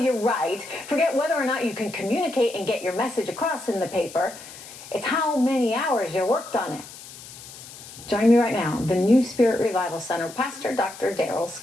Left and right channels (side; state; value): left; noise; hiss, 16 dB below the sound